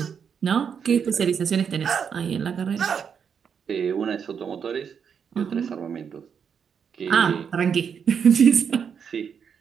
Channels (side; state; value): left; quieter; 7.1 dB